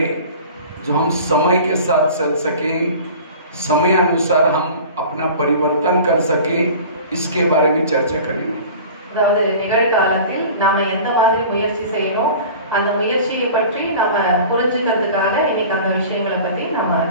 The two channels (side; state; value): both; inverted; correlation -0.41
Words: जो हम समय के साथ चल सकें, समय अनुसार हम अपना परिवर्तन कर सकें, इसके बारे में चर्चा करेंगे। அதாவது நிகழ்காலத்தில் நாம எந்த மாதிரி முயற்சி செய்யணும், அந்த முயற்சியை பற்றி நாம புரிஞ்சுக்கிறதுக்காக இன்னைக்கு அந்த விஷயங்களை பத்தி நாம